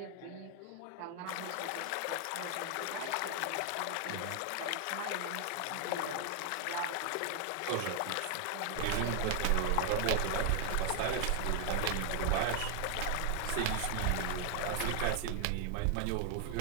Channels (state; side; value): different; both; correlation 0.00